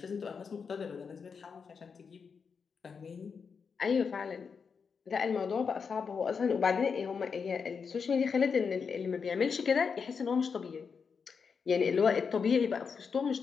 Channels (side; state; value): right; quieter; 5.8 dB